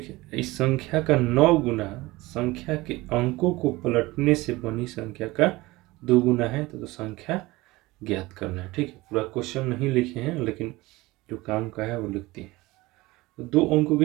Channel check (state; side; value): quieter; left; 20.4 dB